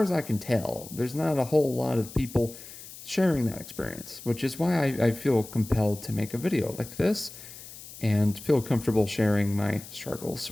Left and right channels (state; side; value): noise; left; hiss, 15 dB below the sound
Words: as I can tell, there's not a whole lot of people sharing that experience, which is why I feel compelled to make a video like this and feel comfortable sharing my